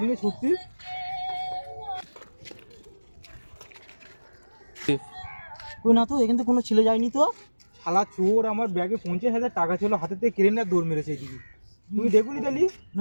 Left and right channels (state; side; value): inverted; both; correlation -1.00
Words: নিয়ে ছুটছি। কই না তো, এখান থেকে কোনো ছেলে যায়নি তো। শালা চোর আমার ব্যাগে 50,000 টাকা ছিল, হাতে থেকে কেড়ে নিয়ে দৌড় মেরেছে এদিকে। তুমি দেখুনি তালি?